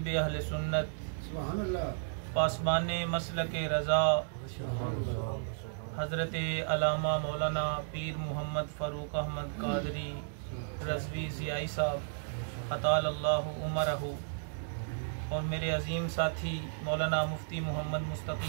اہل سنت پاسبان مسلک رضا حضرت علامہ مولانا پیر محمد فاروق احمد قادری رضوی ضیائی صاحب اطال اللہ عمرہ اور میرے عظیم ساتھی مولانا مفتی محمد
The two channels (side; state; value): left; silent; digital silence